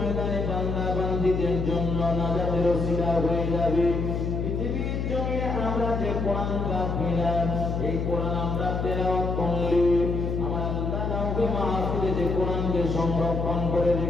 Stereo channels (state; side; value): noise; left; hum, 1 dB below the sound